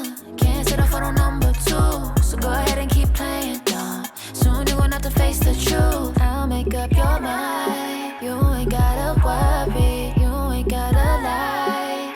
Can't settle for no number two. So go ahead and keep playing dumb. Soon you're gonna have to face the truth. I'll make up your mind. You ain't gotta worry. You ain't gotta lie.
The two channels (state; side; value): identical; both; correlation 1.00